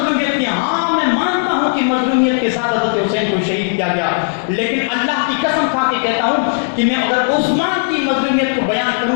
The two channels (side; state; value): right; silent; 69 dB below the other